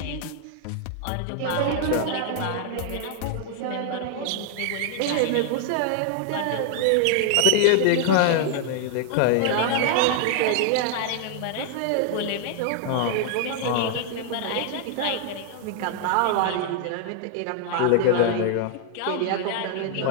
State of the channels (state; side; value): different; both; correlation 0.00